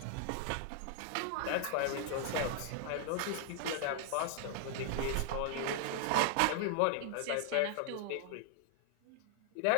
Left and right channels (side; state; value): both; different; correlation 0.00